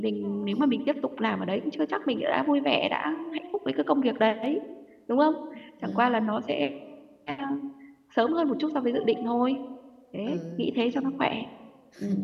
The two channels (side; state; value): both; identical; correlation 1.00